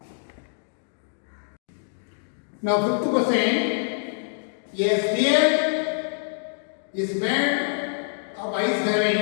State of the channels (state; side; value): silent; right; digital silence